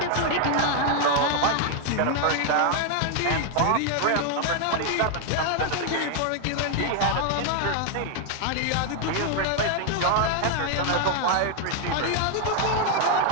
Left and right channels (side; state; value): both; different; correlation 0.00